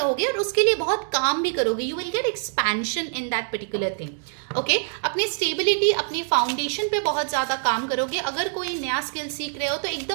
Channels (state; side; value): silent; left; digital silence